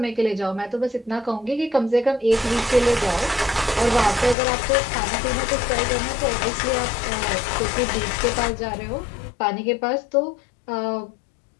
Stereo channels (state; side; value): drops out; right; at 4.4 s